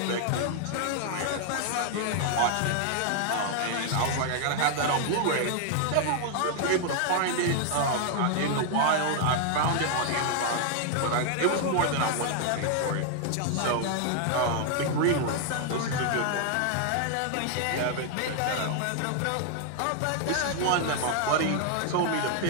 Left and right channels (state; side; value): different; both; correlation 0.00